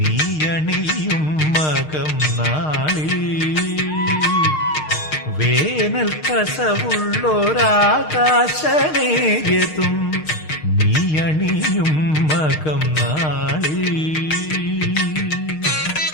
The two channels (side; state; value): right; late; 6.5 ms